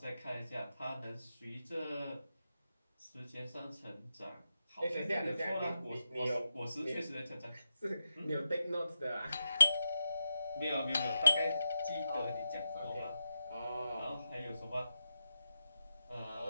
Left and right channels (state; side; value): inverted; both; correlation -0.89